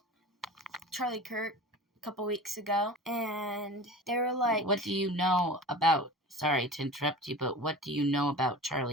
Charlie Kirk a couple weeks ago, and they were like... What do you know about, sorry to interrupt you, but what do you know about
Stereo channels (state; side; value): normal; both; correlation 0.36